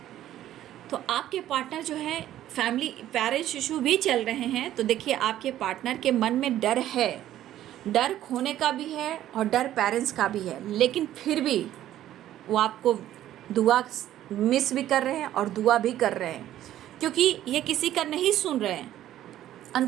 तो आपके पार्टनर जो है, फैमिली पेरेंट्स इशू भी चल रहे हैं। तो देखिए, आपके पार्टनर के मन में डर है, डर खोने का भी है और डर पेरेंट्स का भी है। लेकिन फिर भी वो आपको दुआ मिस भी कर रहे हैं और दुआ भी कर रहे हैं, क्योंकि ये किसी का नहीं सुन रहे हैं,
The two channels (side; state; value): left; quieter; 12.7 dB